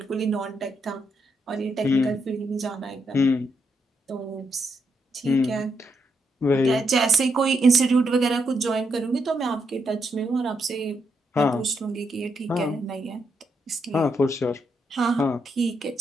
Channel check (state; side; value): normal; both; correlation 0.79